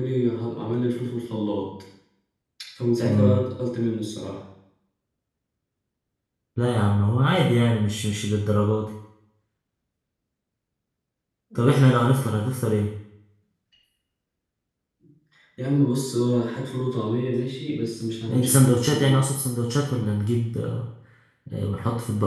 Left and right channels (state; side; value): identical; both; correlation 1.00